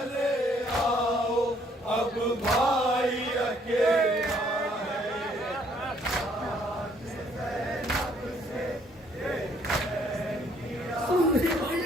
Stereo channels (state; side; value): normal; both; correlation 0.65